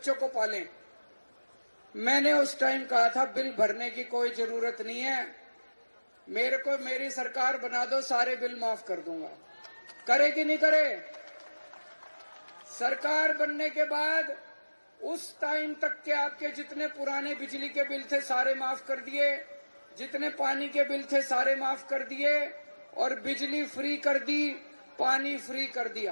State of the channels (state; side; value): inverted; both; correlation -1.00